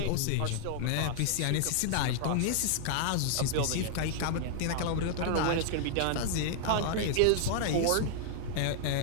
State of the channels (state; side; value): different; both; correlation 0.00